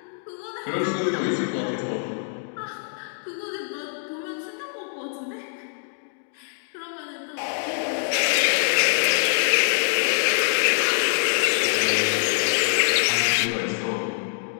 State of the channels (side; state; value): right; silent; digital silence